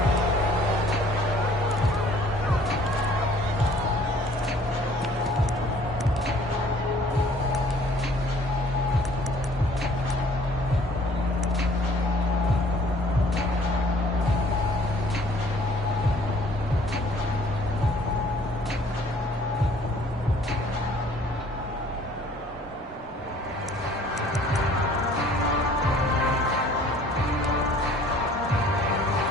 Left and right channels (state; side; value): normal; both; correlation 0.56